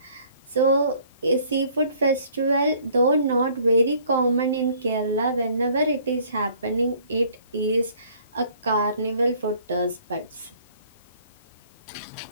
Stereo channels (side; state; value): both; inverted; correlation -0.58